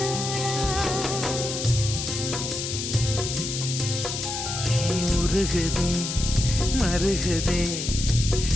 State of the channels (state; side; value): noise; left; hiss, 4 dB below the sound